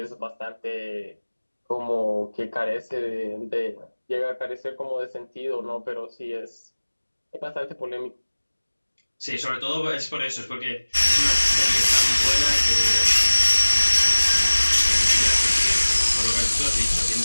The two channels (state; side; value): inverted; both; correlation -1.00